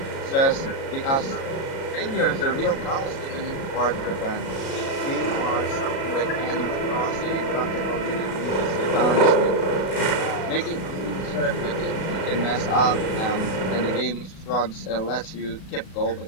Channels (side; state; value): right; late; 37 ms